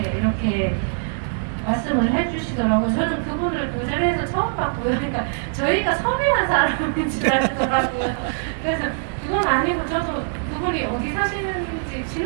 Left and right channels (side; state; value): left; silent; digital silence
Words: 이렇게 말씀을 해주시더라고요. 저는 그분을 그 자리에서 처음 봤고요. 그러니까 저희가 섭외한 사람인 줄 알더라고요. 그래서 그건 아니고 저도 그분이 어디 사시는지